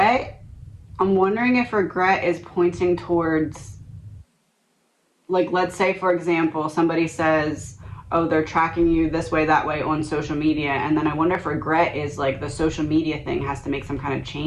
I'm wondering if regret is pointing towards, like, let's say for example somebody says, oh, they're tracking you this way, that way on social media. And then I wonder if regret is like the social media thing has to make some kind of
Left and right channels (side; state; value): both; identical; correlation 1.00